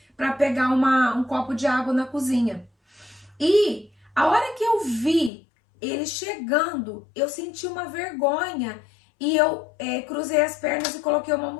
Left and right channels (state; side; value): drops out; right; at 5.3 s